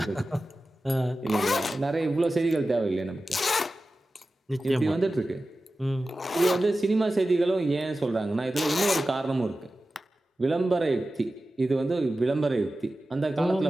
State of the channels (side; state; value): both; normal; correlation 0.94